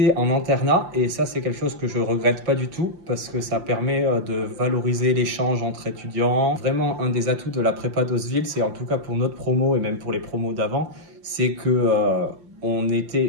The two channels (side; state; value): left; late; 5.6 ms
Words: en internat et ça c'est quelque chose que je regrette pas du tout parce que ça permet de valoriser l'échange entre étudiants. Vraiment un des atouts de la prépa d'Oseville, c'est en tout cas pour notre promo et même pour les promos d'avant, c'est que on